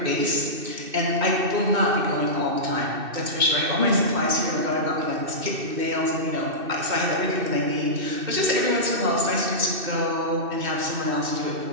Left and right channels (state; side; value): late; left; 2.6 ms